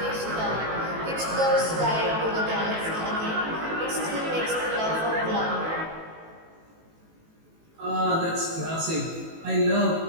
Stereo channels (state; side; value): late; left; 18 ms